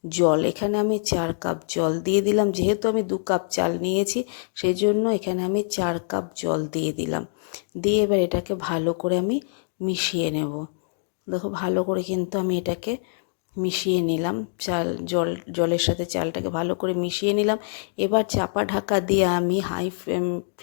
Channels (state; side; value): silent; right; digital silence